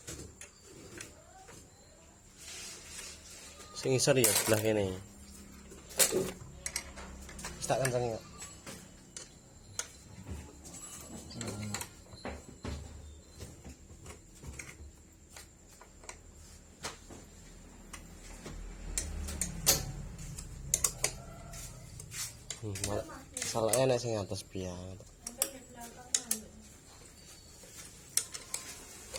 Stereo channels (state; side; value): identical; both; correlation 1.00